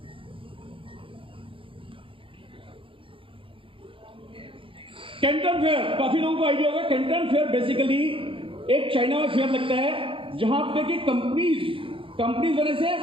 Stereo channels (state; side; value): late; left; 0.25 ms